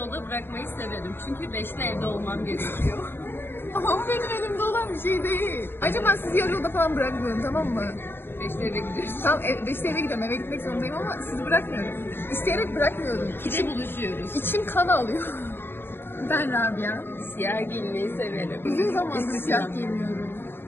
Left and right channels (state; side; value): late; right; 0.10 ms